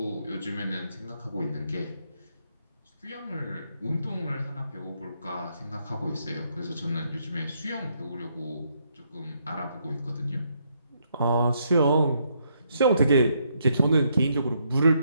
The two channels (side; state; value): both; inverted; correlation -0.75